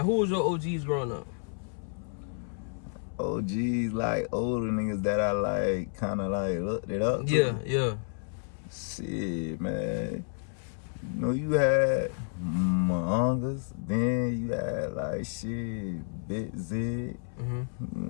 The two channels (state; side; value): silent; right; 58 dB below the other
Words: who was your OGs growing up? OGs, like older niggas that I like, kind of like looked it up to. Yeah. Shit, man. You know, you had Mongas, then you had like shit, Bit Zig. It